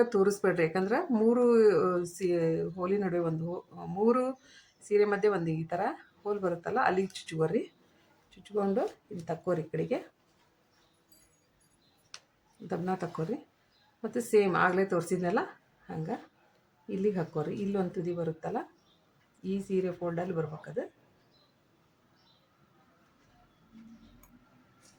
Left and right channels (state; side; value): identical; both; correlation 1.00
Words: ತೋರಿಸ್ಬೇಡ್ರಿ, ಯಾಕಂದ್ರೆ 3 ಹೋಲಿ ನಡುವೆ 3 ಸೀರೆ ಮಧ್ಯೆ ಒಂದು ಈ ಥರ ಹೋಲ್ ಬರುತ್ತಲ್ಲ, ಅಲ್ಲಿಗೆ ಚುಚ್ಕೋರಿ. ಚುಚ್ಕೊಂಡು ಇಲ್ಲಿ ತಕ್ಕೋರಿ, ಈ ಕಡೆಗೆ ದಬ್ಬನ ತಕ್ಕೋರಿ. ಮತ್ತು ಸೇಮ್ ಆಗಲೇ ತೋರಿಸಿದ್ನಲ್ಲ ಹಂಗೆ ಇಲ್ಲಿಗೆ ಹಾಕ್ಕೋರಿ. ಇಲ್ಲೊಂದು ತುದಿ ಬರುತ್ತಲ್ಲ, ಈ ಸೀರೆ ಫೋಲ್ಡಲ್ಲಿ ಬರ್ಬೇಕದು.